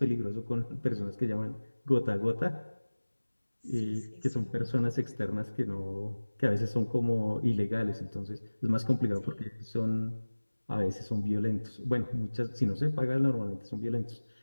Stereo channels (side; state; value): both; inverted; correlation -1.00